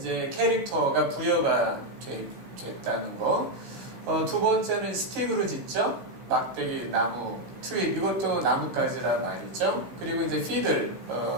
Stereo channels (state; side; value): late; left; 16 ms